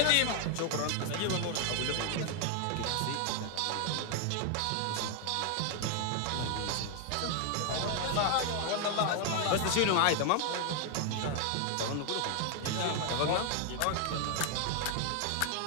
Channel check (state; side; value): different; both; correlation 0.00